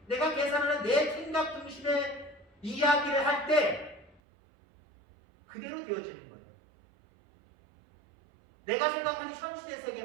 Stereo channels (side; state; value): left; drops out; at 4.2 s